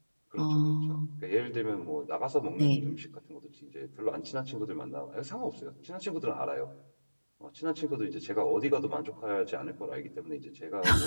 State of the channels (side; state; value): both; inverted; correlation -1.00